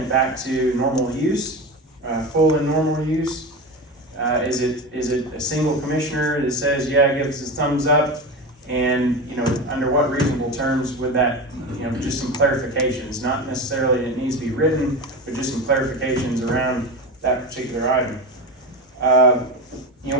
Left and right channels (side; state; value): both; normal; correlation 0.23